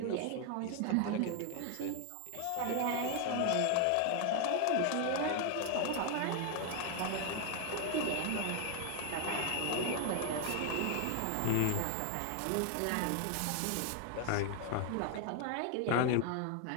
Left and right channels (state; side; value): different; both; correlation 0.01